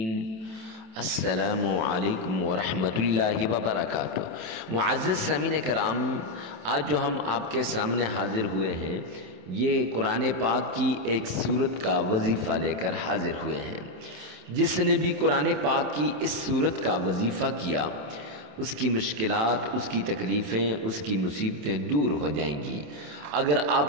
السلام علیکم ورحمۃ اللہ وبرکاتہ۔ معزز سامعین کرام، آج جو ہم آپ کے سامنے حاضر ہوئے ہیں یہ قرآن پاک کی ایک سورت کا وظیفہ لے کر حاضر ہوئے ہیں۔ جس نے بھی قرآن پاک کی اس سورت کا وظیفہ کیا اس کی مشکلات، اس کی تکلیفیں، اس کی مصیبتیں دور ہو جائیں گی۔ اگر آپ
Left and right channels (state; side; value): late; left; 27 ms